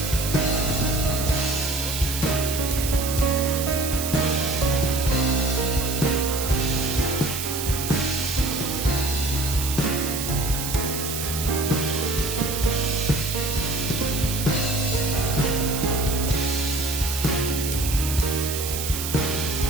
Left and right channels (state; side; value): noise; right; hiss, 4 dB below the sound